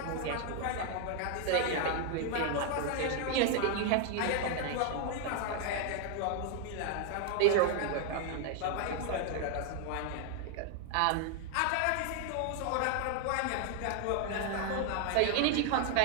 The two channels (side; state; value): both; different; correlation 0.00